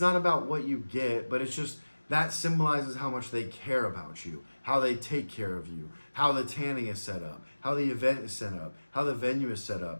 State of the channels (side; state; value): both; inverted; correlation -1.00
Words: about what you get, but it's just that symbolizes how much they care about you, how they take care of you, how the tanning is set up, how the event is set up, how the venue is set